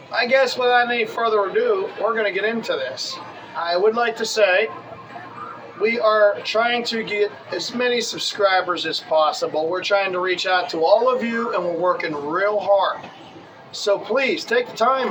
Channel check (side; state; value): both; identical; correlation 1.00